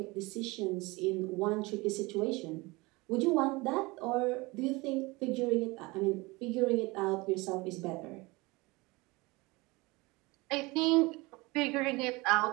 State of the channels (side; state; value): left; quieter; 23.6 dB